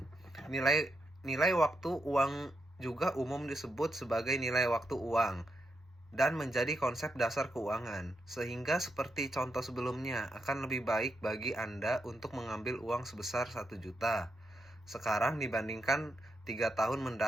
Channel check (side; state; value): both; normal; correlation 0.83